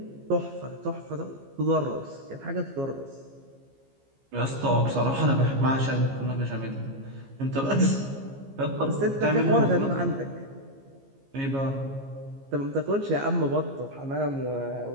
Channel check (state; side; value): late; left; 15 ms